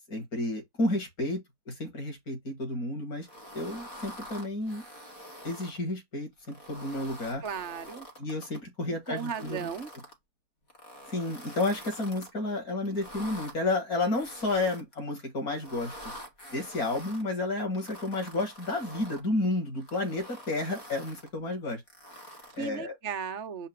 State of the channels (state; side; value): late; right; 4.1 ms